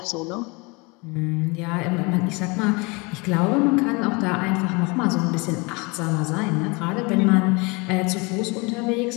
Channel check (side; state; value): right; quieter; 27.9 dB